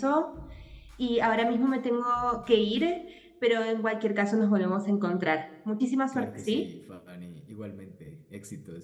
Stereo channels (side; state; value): both; identical; correlation 1.00